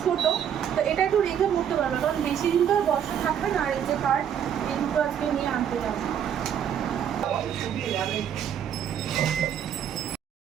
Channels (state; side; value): quieter; left; 9.1 dB